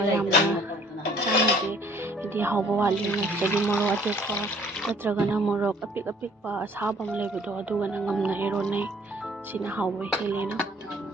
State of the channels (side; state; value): both; normal; correlation 0.58